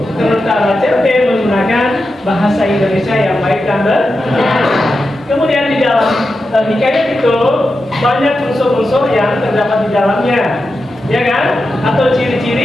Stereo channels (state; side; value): normal; both; correlation 0.90